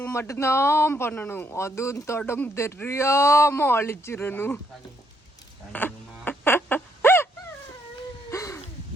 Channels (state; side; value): normal; both; correlation 0.73